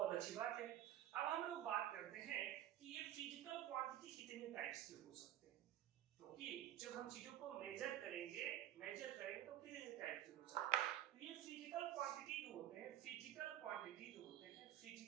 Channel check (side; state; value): left; quieter; 12.3 dB